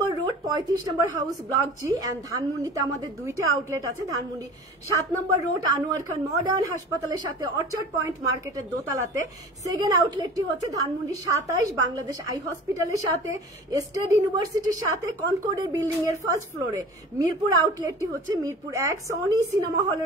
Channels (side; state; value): both; normal; correlation 0.40